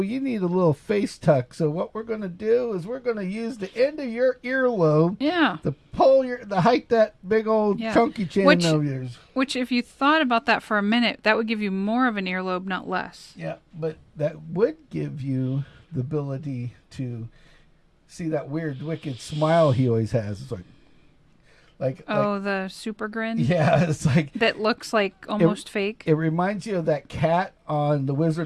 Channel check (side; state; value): both; identical; correlation 1.00